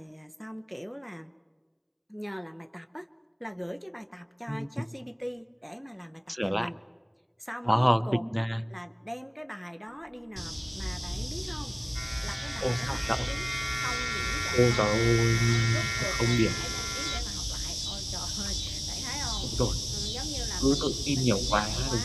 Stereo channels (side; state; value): both; identical; correlation 1.00